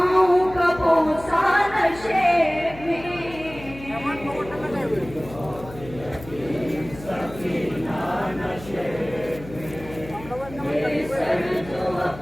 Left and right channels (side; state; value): left; noise; hum, 16 dB below the sound